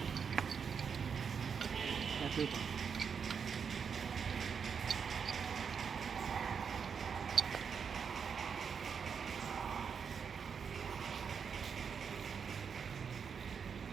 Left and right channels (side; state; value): left; quieter; 6.5 dB